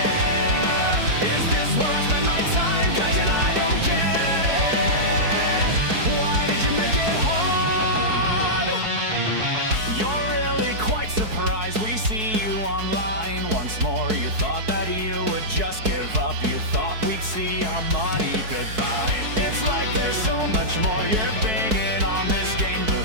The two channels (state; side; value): late; left; 4.7 ms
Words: Is this where I spend my time? Gaijin, I don't get it. Why did you make it hard? You're really quite surprised we see you online once more. You thought that you would just give up. You thought we'd see our money goodbye. It's like there's so much more you're